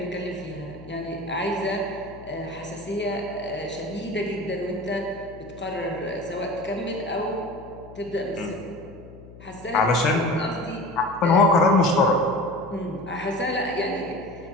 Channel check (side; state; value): left; noise; hum, 18 dB below the sound